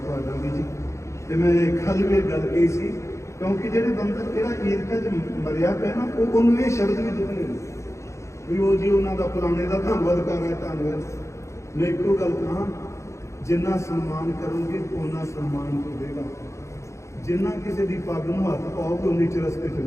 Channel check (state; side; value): late; right; 0.14 ms